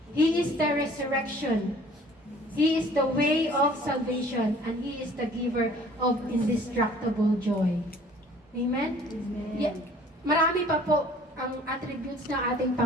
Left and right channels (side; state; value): both; normal; correlation 0.52